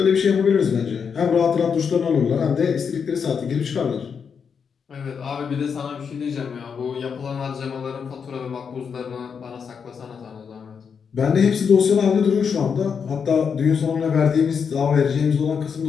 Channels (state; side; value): quieter; right; 6.5 dB